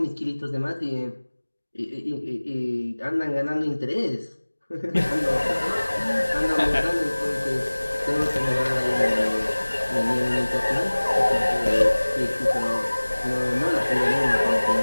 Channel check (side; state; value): both; inverted; correlation -1.00